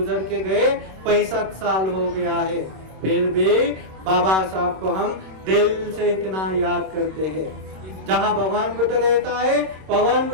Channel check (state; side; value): late; left; 26 ms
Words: के गए, 65 साल हो गया है, फिर भी बाबा साहब को हम दिल से इतना याद करते हैं। जहाँ भगवान बुद्ध रहता है, भगवान